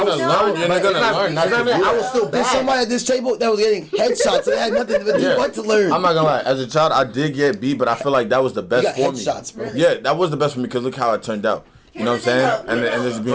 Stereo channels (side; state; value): both; identical; correlation 1.00